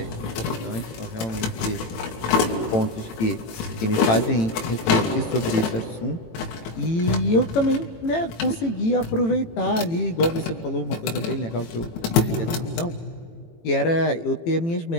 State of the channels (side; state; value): right; late; 18 ms